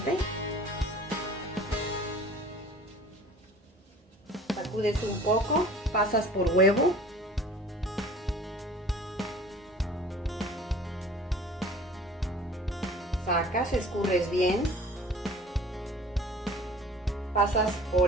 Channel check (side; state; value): both; normal; correlation 0.46